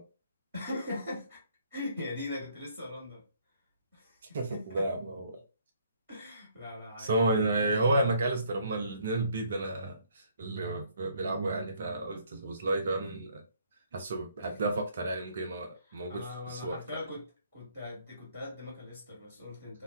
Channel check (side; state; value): both; inverted; correlation -0.65